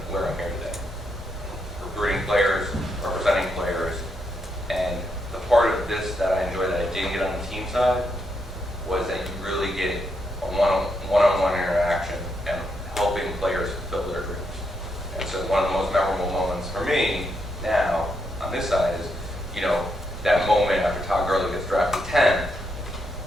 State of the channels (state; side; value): normal; both; correlation 0.80